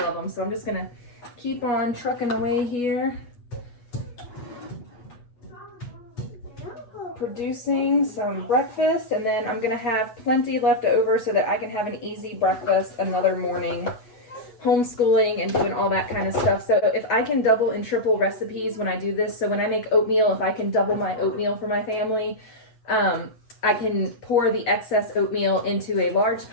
of them. So I'm just going to keep on trucking away here. Producing some breakfast, and then I'm going to have plenty left over so that I can have an easy breakfast another morning. Homeschooling and doing all that kind of stuff. So if I can double and triple recipes when I do this, so when I make oatmeal, if I can double my oatmeal for my family, I can pour the excess oatmeal into a large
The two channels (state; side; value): late; right; 8.3 ms